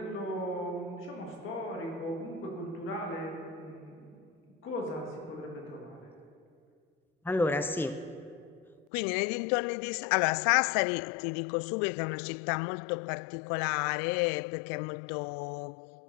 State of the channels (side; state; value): right; drops out; at 8.8 s